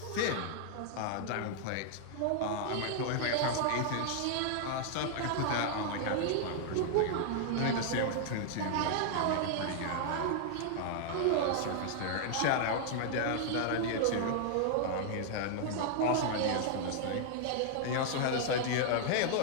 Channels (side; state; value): both; different; correlation -0.01